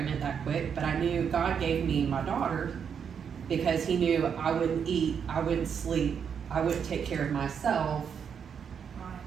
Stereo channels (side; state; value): left; quieter; 7.3 dB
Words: that quick, but I knew God gave me my daughter because he knew I wouldn't eat, I wouldn't sleep, I wouldn't take care of myself